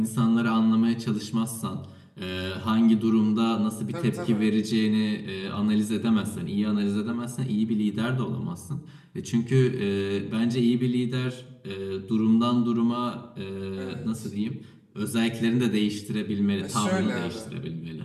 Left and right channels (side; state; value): both; identical; correlation 1.00